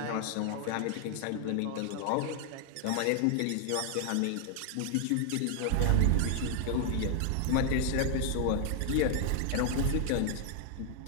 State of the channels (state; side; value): different; both; correlation 0.00